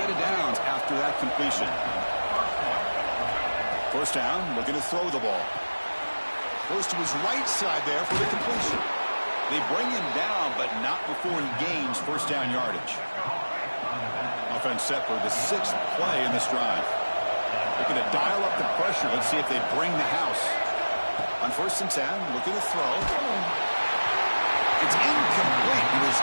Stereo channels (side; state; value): both; inverted; correlation -1.00